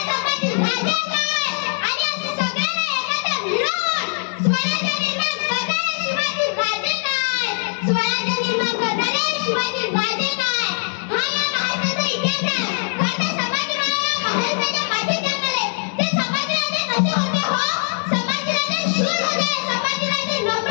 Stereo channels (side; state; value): right; silent; 65 dB below the other